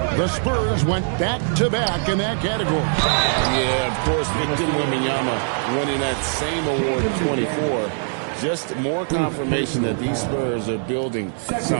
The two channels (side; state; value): left; silent; digital silence